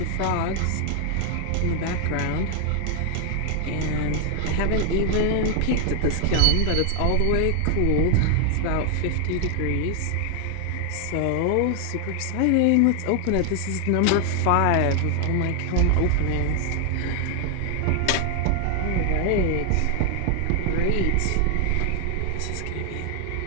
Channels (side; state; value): both; different; correlation 0.00